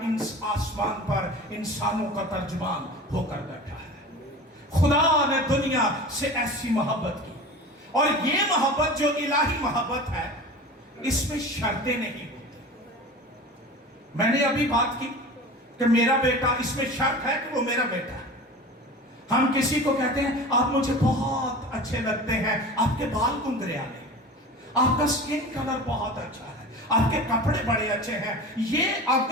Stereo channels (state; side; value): normal; both; correlation 0.35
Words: पर इंसानों का तर्जुमान होकर बैठा है। खुदा ने दुनिया से ऐसी मोहब्बत की, और ये मोहब्बत जो इलाही मोहब्बत है, इसमें शर्तें नहीं होती। मैंने अभी बात की कि मेरा बेटा, इसमें शर्त है कि वो मेरा बेटा है। हम किसी को कहते हैं, आप मुझे बहुत अच्छे लगते हैं, आपके बाल गुंगरियाले, आपका स्किन कलर बहुत अच्छा है, आपके कपड़े बड़े अच्छे हैं। ये